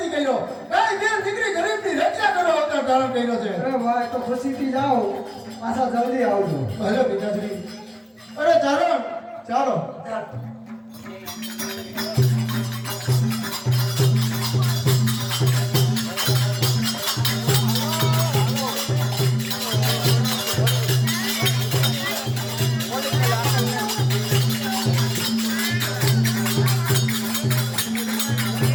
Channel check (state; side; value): identical; both; correlation 1.00